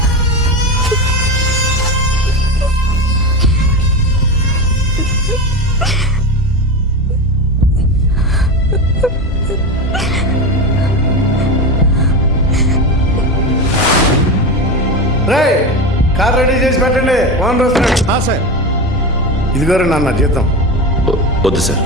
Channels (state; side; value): normal; both; correlation 0.21